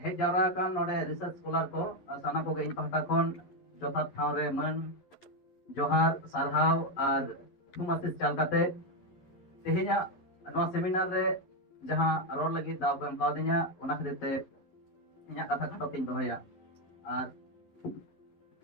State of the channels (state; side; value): late; right; 11 ms